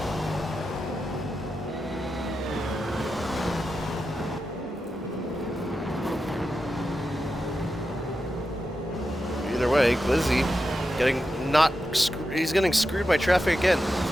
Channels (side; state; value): both; normal; correlation 0.89